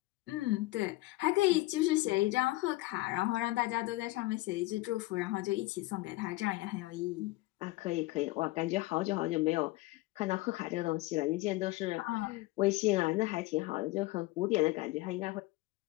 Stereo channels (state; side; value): quieter; right; 20.2 dB